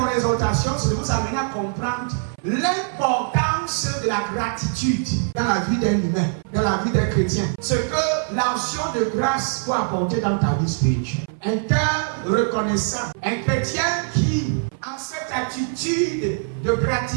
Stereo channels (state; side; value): silent; left; 61 dB below the other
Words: exhortation, c'est de vous amener à comprendre l'importance de la gratitude dans la vie d'un humain, dans la vie d'un chrétien. Ce que l'action de grâce peut apporter dans ta vie spirituelle. Un cœur reconnaissant, un chrétien qui a cette attitude de